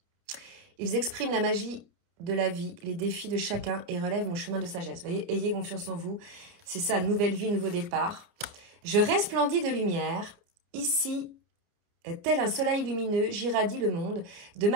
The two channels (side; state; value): left; late; 29 ms